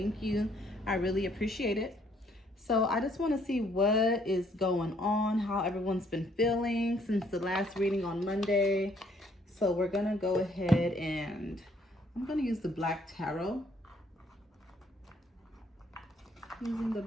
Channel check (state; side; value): normal; both; correlation 0.66